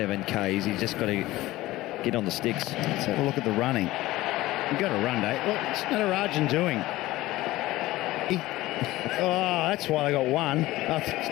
Ks. He's just got to get on the sticks. Let's have a look at the running. You've got to run, Dave. What's Natarajan doing? Oh, that's why they got 1.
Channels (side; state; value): right; quieter; 17.5 dB